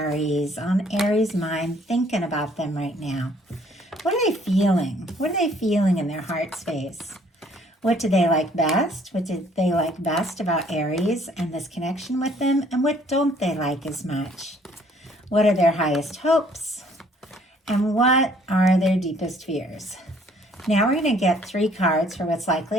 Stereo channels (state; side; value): normal; both; correlation 0.60